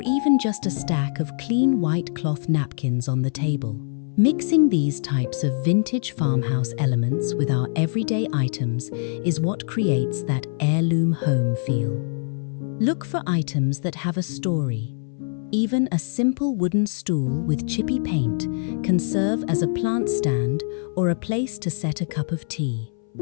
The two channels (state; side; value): silent; right; 61 dB below the other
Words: even just a stack of clean white cloth napkins on the table. Mixing these types of vintage farmhouse elements with our everyday items is what creates that heirloom home feel. Look for items that have a story. Even a simple wooden stool with chippy paint can serve as a plant stand or a place to set a cup of tea.